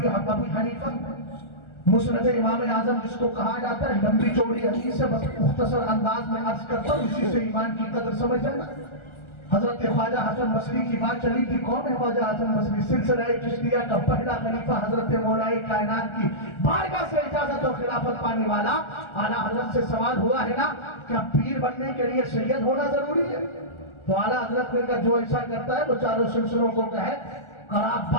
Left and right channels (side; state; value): right; late; 1.4 ms